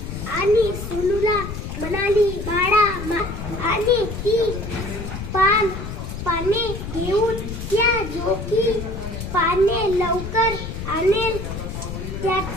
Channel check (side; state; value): left; noise; rumble, 7 dB below the sound